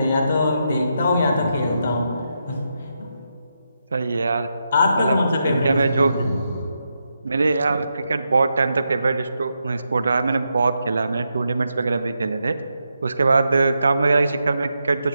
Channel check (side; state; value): both; inverted; correlation -0.84